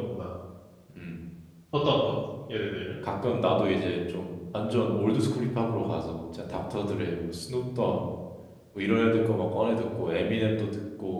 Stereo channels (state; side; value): identical; both; correlation 1.00